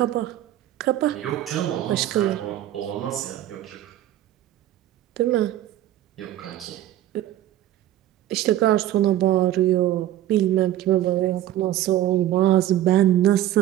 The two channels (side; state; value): left; quieter; 13.0 dB